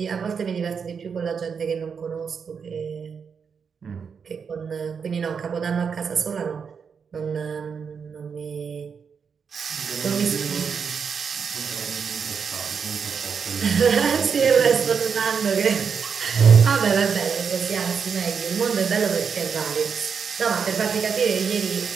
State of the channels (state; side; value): quieter; left; 6.3 dB